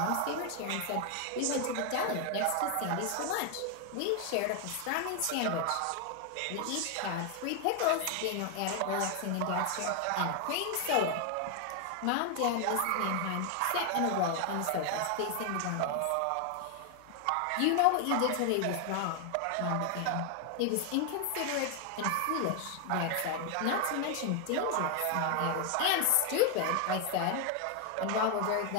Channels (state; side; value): different; both; correlation 0.00